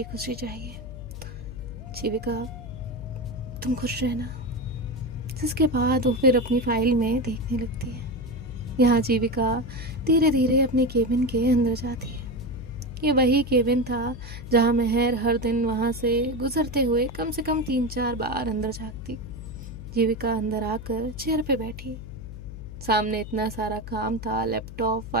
खुशी चाहिए जीविका, तुम खुश रहना। जिसके बाद वो फिर अपनी फाइल में देखने लगती है। यहाँ जीविका धीरे धीरे अपने केबिन के अंदर जाती है। ये वही केबिन था जहाँ महर हर दिन वहाँ से गुजरते हुए कम से कम 3-4 बार अंदर झाँकती। जीविका अंदर आकर चेयर पे बैठी। सामने इतना सारा काम था, लैपटॉप,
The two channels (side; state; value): left; noise; hum, 11 dB below the sound